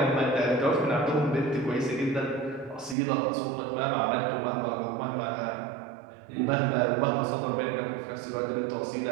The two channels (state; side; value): drops out; left; at 3.0 s